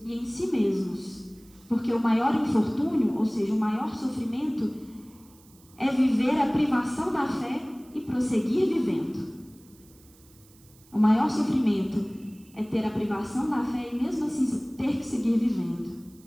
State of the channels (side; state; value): right; noise; hiss, 27 dB below the sound